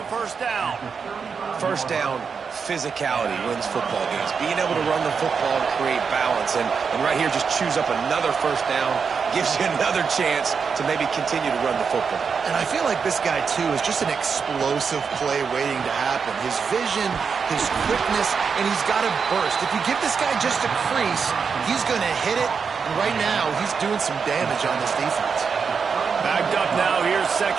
first down. First down, physicality wins football games. Being able to run the football and create balance. And right here, just choose up another first down, gives you another chance to maybe continue to run the football. And I feel like this guy, too, is just an explosive play waiting to happen. His vision, his quickness, and he's got a burst. If you give this guy just a crease, he's going to hit it. And right now, he's doing some damage on this defense. Backed up now, here's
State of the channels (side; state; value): left; quieter; 5.9 dB